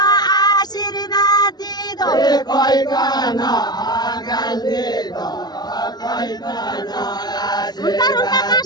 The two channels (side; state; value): right; late; 0.20 ms